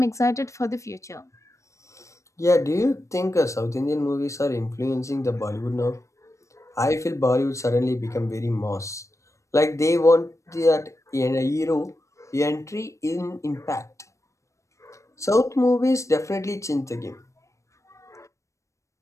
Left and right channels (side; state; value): right; late; 0.15 ms